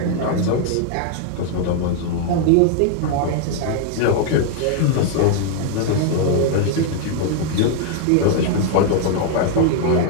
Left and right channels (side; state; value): both; different; correlation 0.00